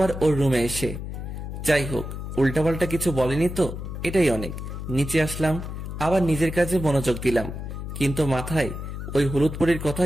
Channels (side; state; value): left; noise; hum, 7 dB below the sound